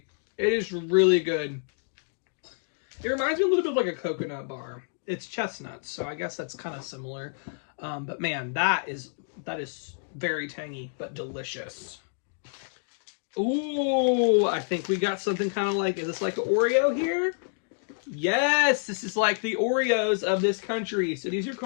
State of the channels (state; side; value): silent; right; digital silence